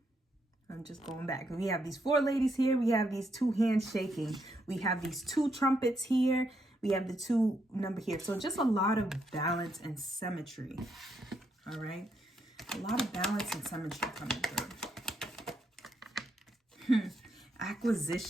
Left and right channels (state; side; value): normal; both; correlation 0.77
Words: I'm just going back. We have these 4 ladies here. We have these 2 hands shaking. We have these 2 trumpets here. We have the 2 number here. So just a lot of balance and symmetry. All right. A lot of balance and symmetry coming through.